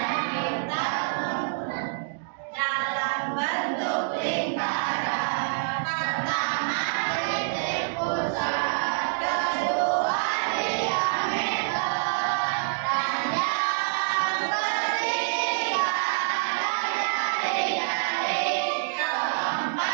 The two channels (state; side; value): silent; left; digital silence